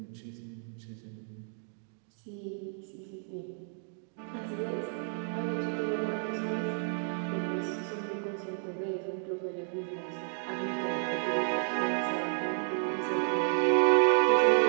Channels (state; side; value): silent; left; 57 dB below the other